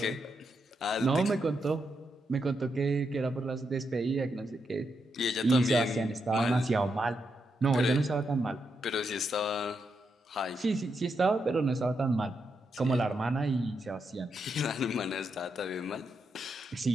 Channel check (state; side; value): normal; both; correlation 0.82